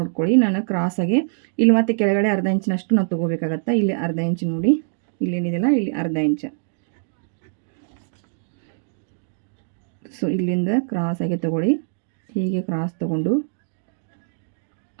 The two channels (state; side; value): silent; left; digital silence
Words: ನಾನು ಕ್ರಾಸಾಗೆ ಇಲ್ಲಿ ಮತ್ತೆ ಕೆಳಗಡೆ ಅರ್ಧ ಇಂಚಿನಷ್ಟು ನಾವು ತೊಗೋಬೇಕಾಗತ್ತೆ. ಇಲ್ಲಿ ಅರ್ಧ ಇಂಚ್ ನೋಡಿ, ಇಲ್ಲೇನಿದೆಯಲ್ಲ ಇಲ್ಲಿ ಅರ್ಧ ಇಂಚ್. ಸೊ ಇಲ್ಲಿಂದ ಕ್ರಾಸಾಗಿ ತೊಗೊಳ್ಳಿ. ಹೀಗೆ ಕ್ರಾಸ್ ತೊಗೊಂಡು